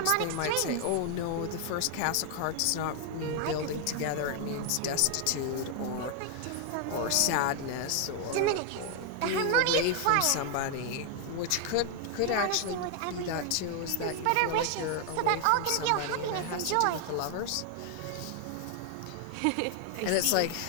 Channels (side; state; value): both; different; correlation 0.00